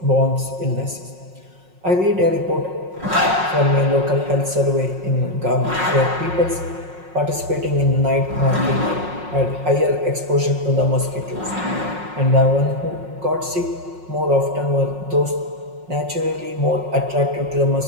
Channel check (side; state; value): left; late; 5.5 ms